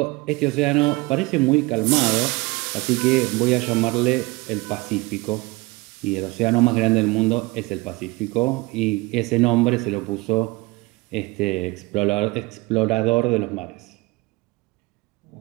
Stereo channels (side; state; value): left; quieter; 23.0 dB